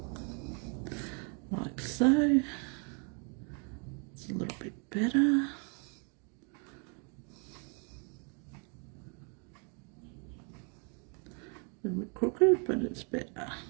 like so. It's a little bit better. A little bit crooked, but it's better.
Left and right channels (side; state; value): left; quieter; 38.3 dB